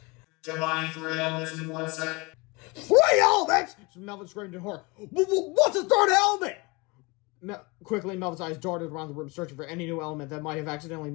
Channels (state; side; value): quieter; right; 26.3 dB